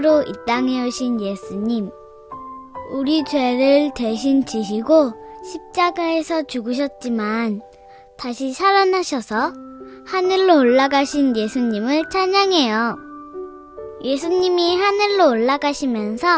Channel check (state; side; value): identical; both; correlation 1.00